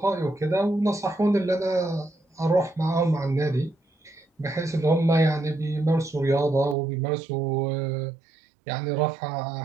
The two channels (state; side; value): drops out; left; at 6.8 s